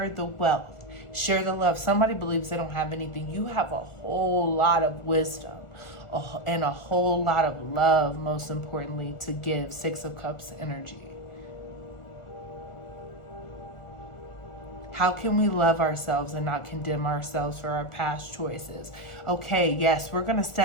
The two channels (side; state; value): right; late; 1.4 ms